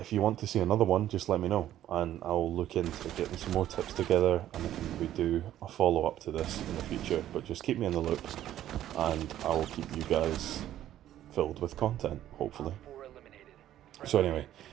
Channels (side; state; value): left; quieter; 12.3 dB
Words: you want to see another one, just let me know, and I'll look into getting some more tips together, and I can maybe do a follow-up to this in the future. But just keep me in the loop, and I'll keep you guys filled with content, hopefully. So anyway,